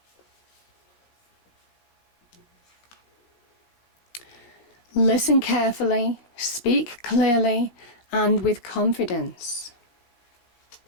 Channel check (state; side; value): late; right; 17 ms